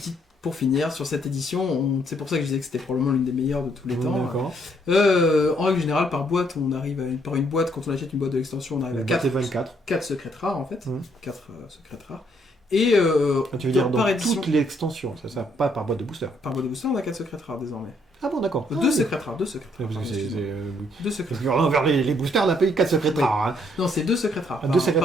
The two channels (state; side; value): normal; both; correlation 0.70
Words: pour finir, sur cette édition, c'est pour ça que je disais que c'était probablement l'une des meilleures de tous les temps. D'accord. En règle générale, par boîte, on arrive par une boîte, quand on achète une boîte de l'extension, on arrive à 4 secrètes rares en fait. 4 secrètes rares. Et tu veux dire par dans édition, toute l'extension, ça pas par boîte de booster. par boîte de booster, on a 4 secrètes rares désormais. Ah bon, d'accord. 2 secrètes rares, 2 secrètes rares. Parce que pardon, deux secrètes Parce que envers les boosters, on a payé 4 secrètes rares. Hein. Non, c'est 2 secrètes rares. Deux secrètes